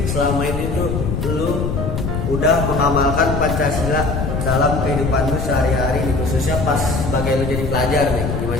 selama ini tuh lu udah mengamalkan Pancasila dalam kehidupan lu sehari-hari nih, khususnya pas sebagai lu jadi pelajar nih,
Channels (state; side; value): noise; left; rumble, 2 dB below the sound